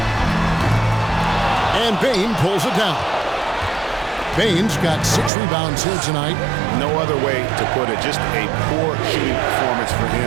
And Bain pulls it down. Baines got 6 rebounds here tonight. No other way to put it. Just a poor shooting performance for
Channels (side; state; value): left; drops out; at 5.3 s